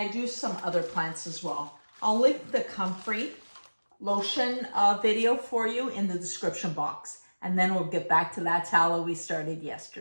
do some other plants as well. I'll link the comfrey lotion video for you in the description box. And then we'll get back to that tallow we started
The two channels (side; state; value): both; inverted; correlation -1.00